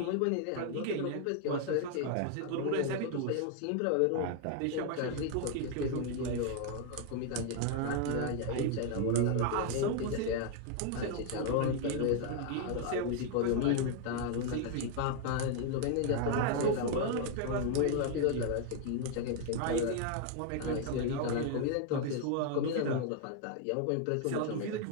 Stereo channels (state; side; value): different; both; correlation 0.00